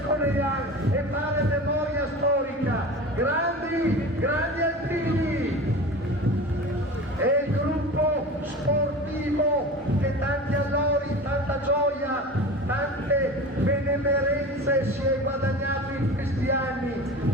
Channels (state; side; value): normal; both; correlation 0.34